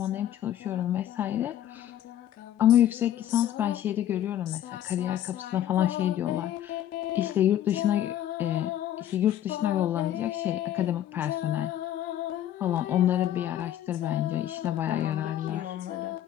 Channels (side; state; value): right; quieter; 11.6 dB